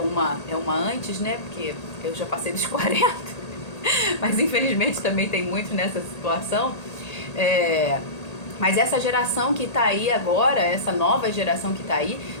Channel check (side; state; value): right; late; 1.8 ms